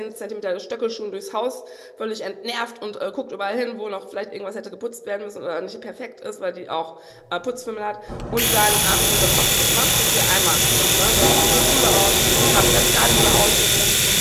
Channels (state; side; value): identical; both; correlation 1.00